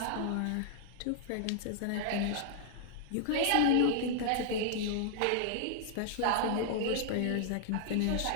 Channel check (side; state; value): both; different; correlation -0.01